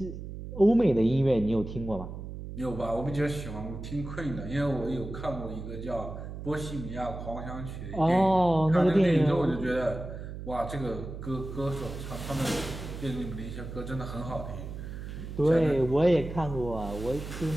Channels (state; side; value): noise; right; hum, 9 dB below the sound